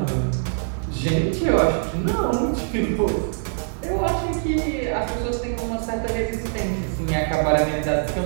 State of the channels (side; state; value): left; silent; digital silence